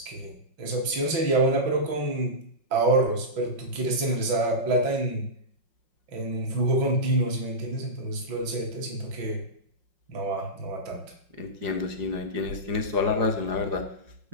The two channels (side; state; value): left; late; 5.5 ms